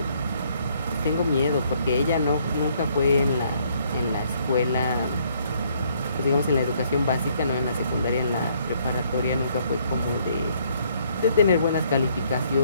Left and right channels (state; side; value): inverted; both; correlation -0.67